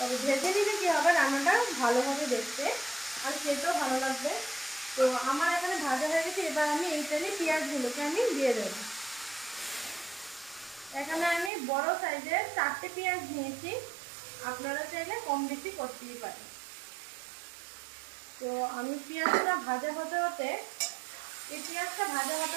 ভেজে নিলে কী হবে রান্নাটা ভালো হবে দেখতে আর খেতেও ভালো লাগবে। তো আমার এখানে ভাজা হয়ে গেছে, এবার আমি এই তেলে পেঁয়াজগুলোকে আমি দিয়ে দেবো। এখানে আমি বড় সাইজের 4টে পেঁয়াজ নিয়েছি, আপনারা চাইলে কম বেশি করতেই পারেন। তো আমি পেঁয়াজটা ভাজা হতে হতে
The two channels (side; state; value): left; drops out; at 11.5 s